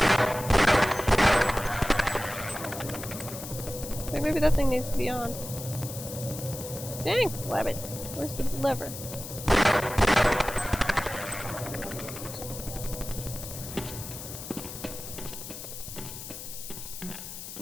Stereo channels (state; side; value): noise; left; hiss, 10 dB below the sound